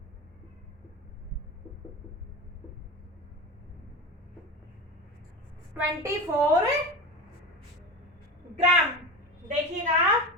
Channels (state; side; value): normal; both; correlation 0.26